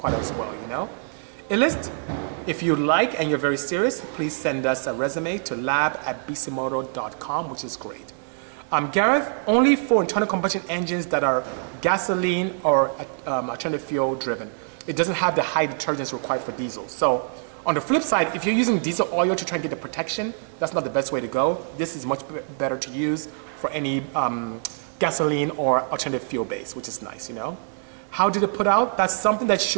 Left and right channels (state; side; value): silent; left; 62 dB below the other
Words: as well, you know? Illist, if you like and you're very serious, please send us a resume to lab@bisimoto.com, which is great. Gareth, only for internal combustion engines that are gasoline or alternative fuel driven. It doesn't have the high detergents required for diesel. So on the flip side, if you're using diesel oil to try and get the protection, that's not the best way to go. This is much better to use for any gasoline or alternative fuel base, which is nice, you know. How did it put out? That's something that you